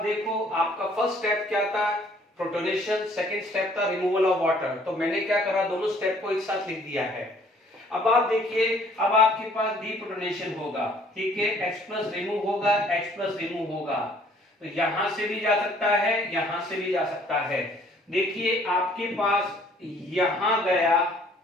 देखो आपका फर्स्ट स्टेप क्या था, प्रोटोनेशन, सेकंड स्टेप था रिमूवल ऑफ वाटर, तो मैंने क्या करा, दोनों स्टेप को एक साथ लिख दिया है। अब आप देखिए अब आपके पास डीप्रोटोनेशन होगा, ठीक है, H+ रिमूव होगा, H+ रिमूव होगा, तो यहां से भी जा सकता है, यहां से भी जा सकता है। देखिए आपके पास यहां गया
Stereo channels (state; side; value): normal; both; correlation 0.59